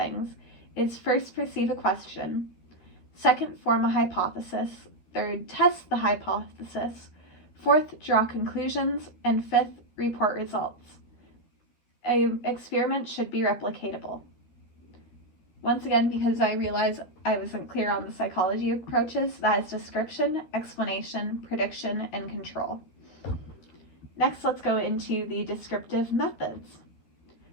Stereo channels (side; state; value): right; late; 12 ms